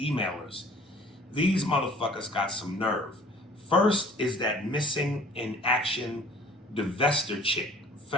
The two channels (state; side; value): normal; both; correlation 0.51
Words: These motherfuckers got some nerve. First is that missing in action divester chick,